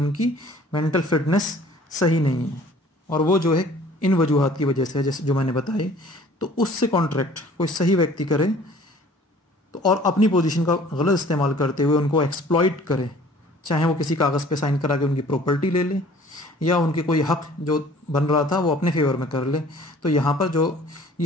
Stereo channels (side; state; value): both; normal; correlation 0.51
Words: मेंटल फिटनेस सही नहीं है, और वो जो है इन वजूहात की वजह से जैसे जो मैंने बताए, तो उससे कॉन्ट्रैक्ट कोई सही व्यक्ति करे तो और अपनी पोजीशन का गलत इस्तेमाल करते हुए उनको एक्सप्लॉइट करे, चाहे वो किसी कागज़ पे साइन करा के उनकी प्रॉपर्टी ले ले या उनके कोई हक जो बन रहा था वो अपने फेवर में कर ले। तो यहाँ पर जो